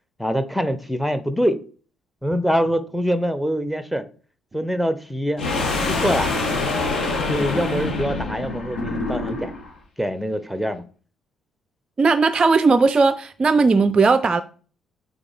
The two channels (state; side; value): normal; both; correlation 0.84